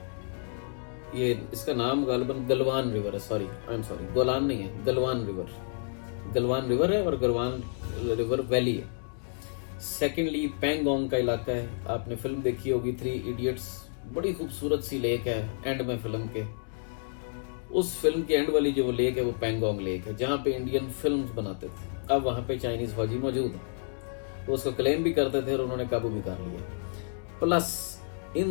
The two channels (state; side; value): silent; right; digital silence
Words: ये इसका नाम गालिबन गलवान रिवर है, sorry I am sorry, Golan नहीं है, गलवान रिवर है और गलवान रिवर वैली है। सेकेंडली पैंगोंग का इलाका है, आपने फिल्म देखी होगी 3 इडियट्स, बड़ी खूबसूरत सी लेक है एंड में फिल्म के, उस फिल्म के एंड वाली जो वो लेक है वो पैंगोंग लेक है, जहाँ पे इंडियन फिल्म्स बनाते थे। अब वहाँ पे चाइनीज फौजी मौजूद है, वो उसको क्लेम भी करते थे और उन्होंने काबू भी कर लिया। प्लस